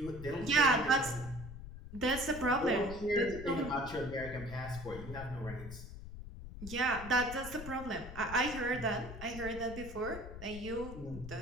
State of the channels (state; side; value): noise; left; rumble, 11 dB below the sound